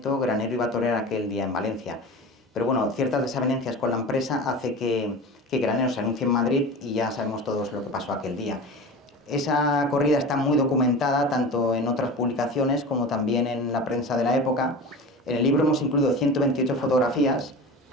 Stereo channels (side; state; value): both; normal; correlation 0.32